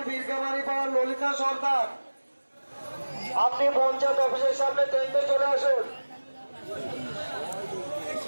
বীরগামারি পাড়ার ললিতা সরকার, আপনি পঞ্চায়েত অফিসের সামনে টেন্টে চলে আসুন।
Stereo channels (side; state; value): both; inverted; correlation -1.00